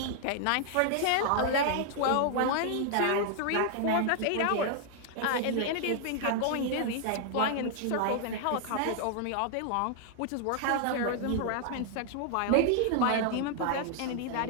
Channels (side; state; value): both; different; correlation 0.00